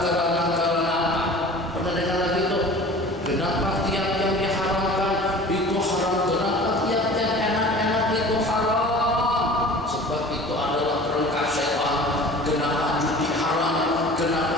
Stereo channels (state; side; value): noise; left; hum, 27 dB below the sound